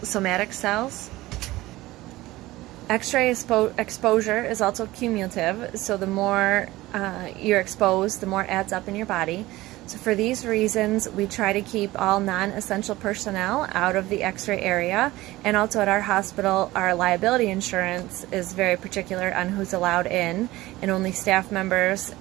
cells. X-ray exposure is also cumulative, so the more you're exposed, the more it adds up in your body. So for these reasons, we try to keep all non-essential personnel out of the X-ray area, and also at our hospital, our liability insurance is very particular on who's allowed in, and only staff members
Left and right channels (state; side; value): quieter; left; 18.1 dB